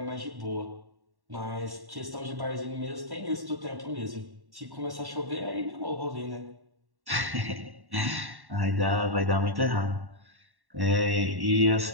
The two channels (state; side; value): late; left; 1.1 ms